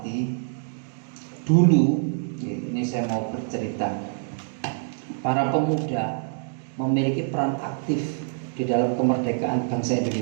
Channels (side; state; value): left; silent; 60 dB below the other